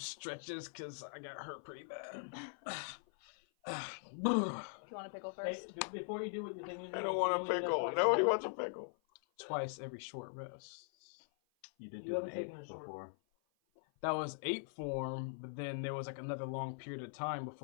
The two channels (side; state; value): right; silent; 50 dB below the other